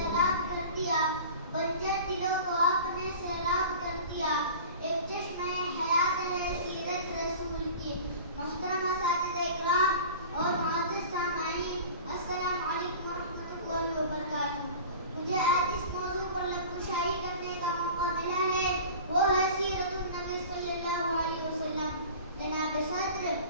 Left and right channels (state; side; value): inverted; both; correlation -0.39